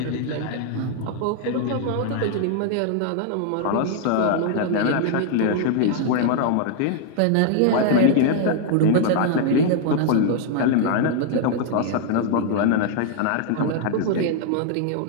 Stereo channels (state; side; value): different; both; correlation 0.00